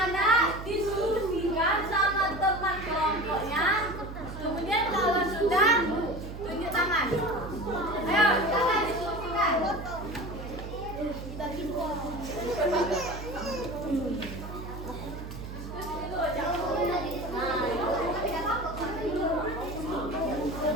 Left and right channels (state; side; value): noise; right; hum, 10 dB below the sound